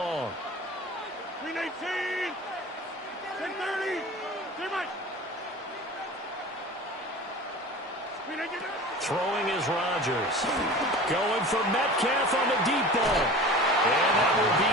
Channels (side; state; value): both; normal; correlation 0.37